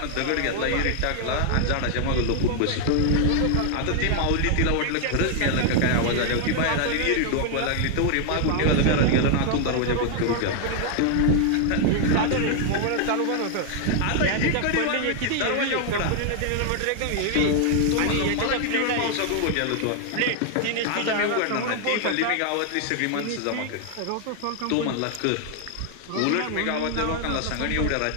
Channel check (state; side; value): different; both; correlation 0.00